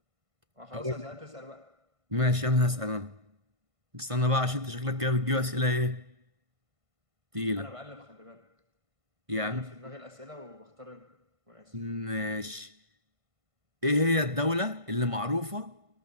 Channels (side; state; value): left; late; 1.5 ms